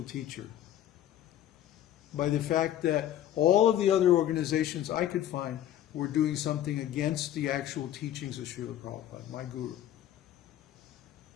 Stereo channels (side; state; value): right; quieter; 11.8 dB